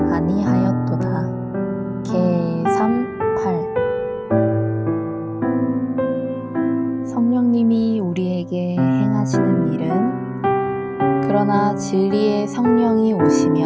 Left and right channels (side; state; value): both; identical; correlation 1.00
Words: 아니하였도다. 개 3:8. 성령님이 우리에게 행하시는 일은 그러나 진리의 성령이